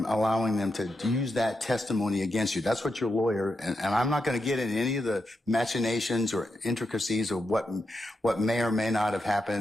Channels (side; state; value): both; normal; correlation 0.85